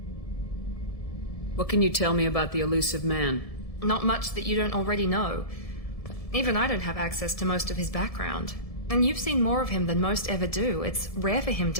What can you tell me about the Elusive Man? Not much that you don't already know. Even I don't have access to most of his background. And you've seen more of him than most ever do. It's rare for him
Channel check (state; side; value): late; right; 1.7 ms